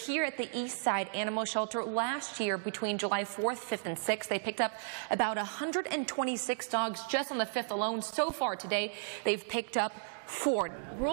at the East Side Animal Shelter. Last year, between July 4th, 5th, and 6th, they picked up about 126 dogs just on the 5th alone. So far today, they've picked up 4.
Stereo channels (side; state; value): left; silent; digital silence